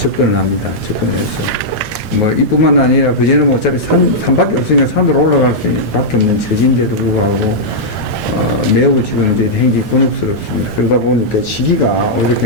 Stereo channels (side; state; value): both; normal; correlation -0.08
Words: 합니다. 접근을 해서. 뭐, 이뿐만 아니라, 그전에는 어차피 산밖에 없으니까 산으로 올라갈 수밖에 없는 처지인데도 불구하고, 매우 지금 이제 행기 곤혹스럽습니다. 그러다 보니까 시기가 오히려